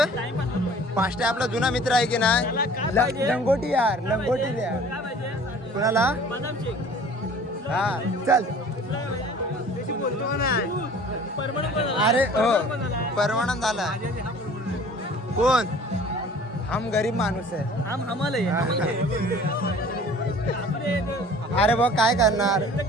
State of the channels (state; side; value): normal; both; correlation 0.48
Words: पाचशे आपला जुना मित्र आहे की नाही? लंगोटी यार लंगोटी द्या कुणाला? हा चल अरे हो परमानंद झाला. कोण? हम गरीब माणूस आहे. अरे बघ काय करणार?